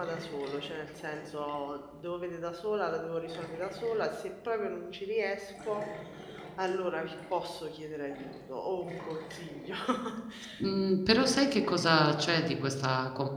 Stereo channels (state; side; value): identical; both; correlation 1.00